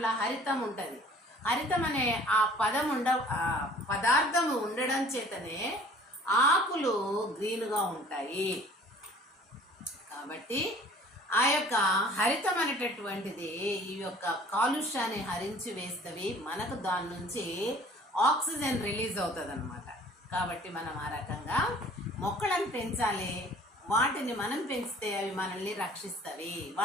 హరితం ఉంటుంది. హరితం అనే ఆ పదార్థము ఉండడం చేతనే ఆకులు గ్రీన్గా ఉంటాయి. కాబట్టి ఆ యొక్క హరితం అనేటటువంటిది ఈ యొక్క కాలుష్యాన్ని హరించి వేస్తవి, మనకు దాని నుంచి ఆక్సిజన్ రిలీజ్ అవుతుంది అనమాట. కాబట్టి మనం ఆ రకంగా మొక్కలను పెంచాలి. వాటిని మనం పెంచితే అవి మనల్ని రక్షిస్తవి.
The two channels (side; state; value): both; normal; correlation 0.51